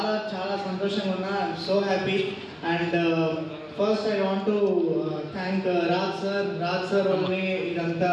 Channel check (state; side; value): identical; both; correlation 1.00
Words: చాలా సంతోషంగా ఉన్నా. I'm so happy. And first I want to thank Raj sir వల్లనే ఇదంతా